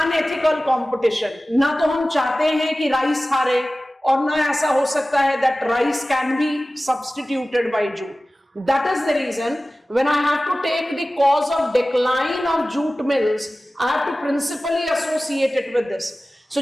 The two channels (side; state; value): both; normal; correlation 0.97